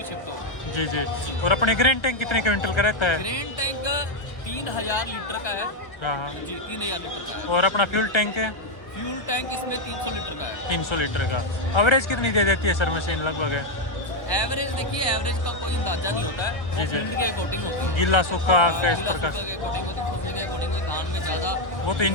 शिफ्ट हो गए। जी जी। और अपने ग्रेन टैंक कितने क्विंटल का रहता है? ग्रेन टैंक 3000 लीटर का है। हाँ हाँ। जी, 3000 लीटर का है। और अपना फ्यूल टैंक है? फ्यूल टैंक इसमें 300 लीटर का है। 300 लीटर का। एवरेज कितनी दे देती है सर मशीन लगभग? एवरेज देखिए, एवरेज का कोई अंदाजा नहीं होता है। वो फील्ड के अकॉर्डिंग होती है। गीला सूखा हाँ, इस गीला प्रकार सूखा के अकॉर्डिंग होती है, फसल के अकॉर्डिंग होती है। धान में ज़्यादा वो तो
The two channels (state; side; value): late; right; 1.2 ms